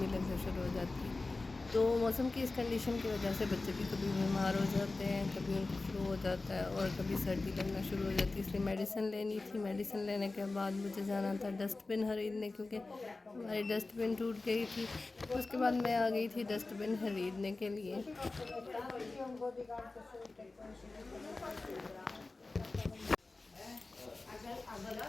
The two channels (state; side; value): quieter; right; 3.4 dB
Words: लगना शुरू हो जाती है। तो मौसम की इस कंडीशन की वजह से बच्चे भी कभी बीमार हो जाते हैं, कभी उनको फ्लू हो जाता है और कभी सर्दी लगना शुरू हो जाती है। इसलिए मेडिसिन लेनी थी। मेडिसिन लेने के बाद मुझे जाना था डस्टबिन खरीदने, क्योंकि हमारी डस्टबिन टूट गई थी। उसके बाद मैं आ गई थी डस्टबिन खरीदने के लिए।